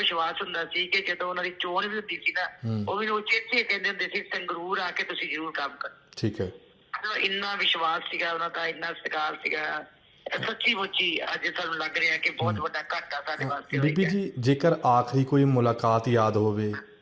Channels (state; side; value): identical; both; correlation 1.00